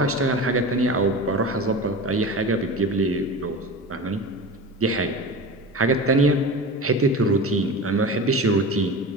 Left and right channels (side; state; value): both; normal; correlation 0.30